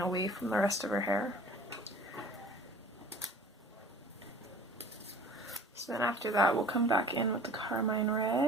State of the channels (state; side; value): normal; both; correlation 0.46